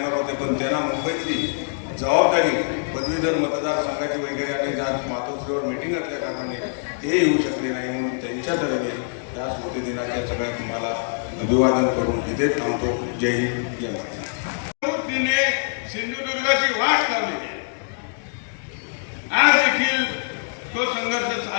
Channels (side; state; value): right; silent; digital silence